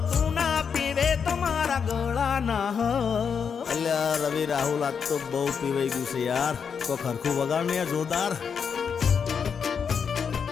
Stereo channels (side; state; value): right; quieter; 6.6 dB